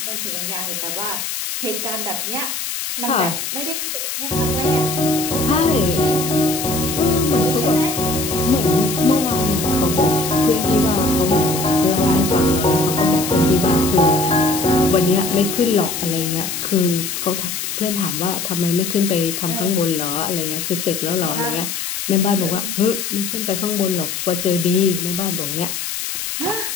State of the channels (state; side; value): noise; left; hiss, 4 dB below the sound